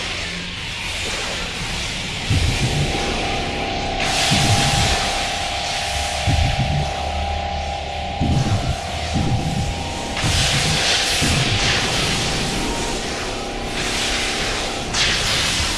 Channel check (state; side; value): identical; both; correlation 1.00